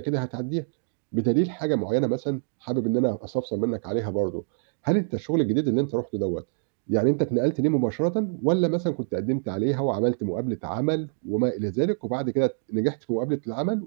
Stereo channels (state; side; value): silent; left; digital silence